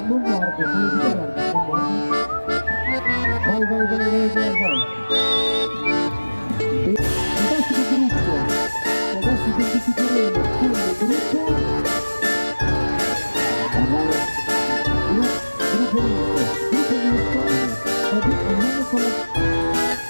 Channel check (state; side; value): inverted; both; correlation -1.00